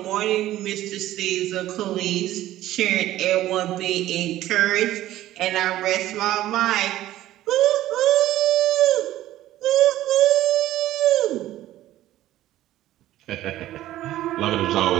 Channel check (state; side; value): quieter; left; 14.3 dB